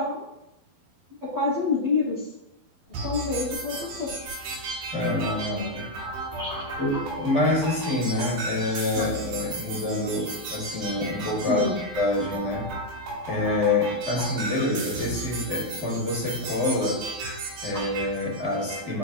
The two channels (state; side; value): late; left; 12 ms